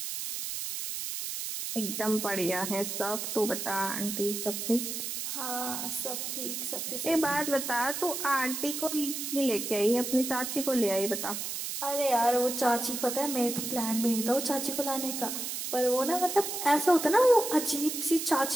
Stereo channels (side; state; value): right; noise; hiss, 4 dB below the sound